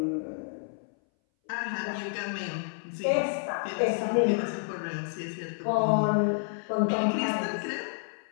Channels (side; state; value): right; silent; 58 dB below the other